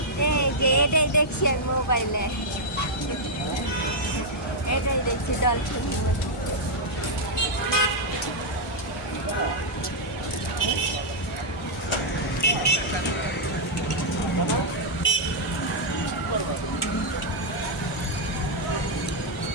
এই যে এটাই দেখছি আমি মোবাইলে, এটাই দেখছি dolphin.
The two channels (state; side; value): normal; both; correlation -0.04